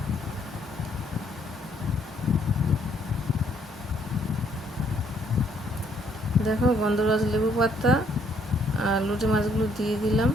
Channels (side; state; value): both; normal; correlation 0.67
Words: দেখো গন্ধরাজ লেবু পাতা আর লইট্টা মাছগুলো দিয়ে দিলাম,